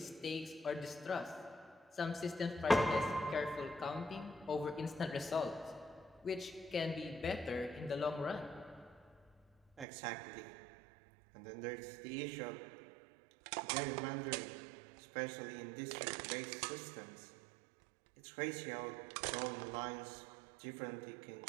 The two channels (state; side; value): drops out; left; at 9.9 s